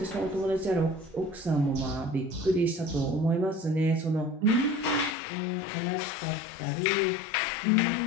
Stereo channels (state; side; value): drops out; right; at 5.2 s